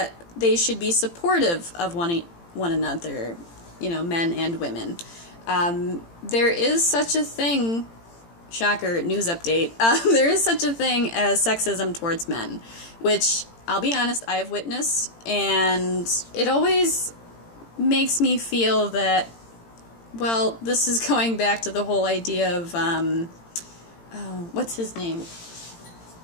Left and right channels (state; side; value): late; right; 18 ms